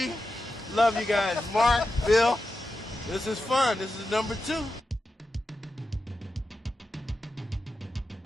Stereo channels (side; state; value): both; normal; correlation 0.90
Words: Love you guys. Mark, Bill. This is fun. This is number 2.